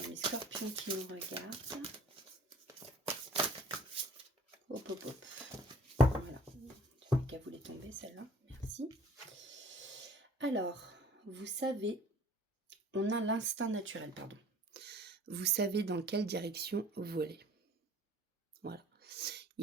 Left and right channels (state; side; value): normal; both; correlation 0.51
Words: Scorpions qui nous regardent. Hop, hop, hop. Voilà. Je n'ai qu'à vous les tomber, celle-là. Merci. Alors, vous savez, on a l'instinct naturel, pardon. Vous savez dans quelle direction voler. Voilà.